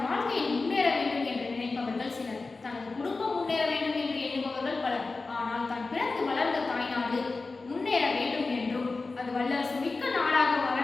வாழ்க்கையில் முன்னேற வேண்டும் என்று நினைப்பவர்கள் சிலர், தனது குடும்பம் முன்னேற வேண்டும் என்று எண்ணுபவர்கள் பலர். ஆனால் தான் பிறந்து வளர்ந்த தாய்நாடு முன்னேற வேண்டும் என்றும் அது வல்லரசு மிக்க நாடாக வர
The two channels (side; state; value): right; quieter; 3.8 dB